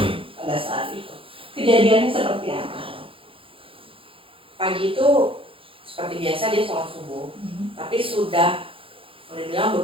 Pada saat itu. Kejadiannya seperti apa? Pagi itu seperti biasa dia sholat subuh, tapi sudah boleh bilang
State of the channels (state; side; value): late; left; 0.26 ms